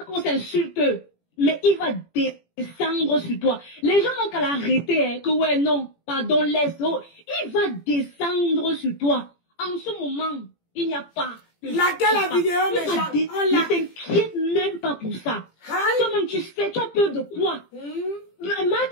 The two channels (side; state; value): right; late; 18 ms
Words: qu'on s'insulte? Mais il va descendre sur toi. Les gens n'ont qu'à l'arrêter, hein, que ouais, non, pardon, laisse. Oh. Il va descendre sur toi. En ce moment, il n'y a pas. Laquelle la vidéo, ne t'inquiète même pas pour ça. Toi-même, tu sais, tu as peur de quoi? Marthe